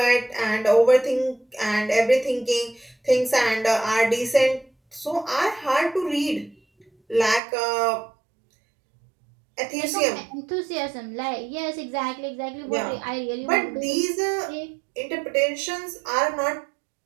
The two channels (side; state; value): left; drops out; at 7.4 s